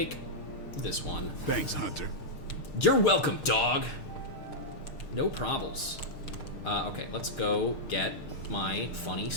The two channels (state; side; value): late; right; 6.6 ms